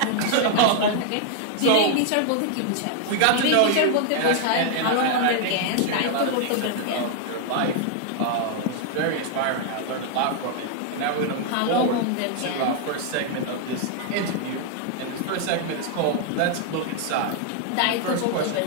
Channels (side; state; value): both; different; correlation 0.00